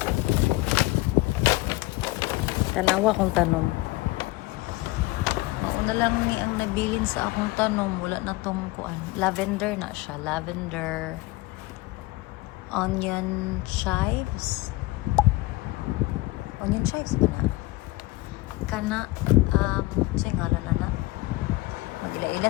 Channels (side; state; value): right; quieter; 20.3 dB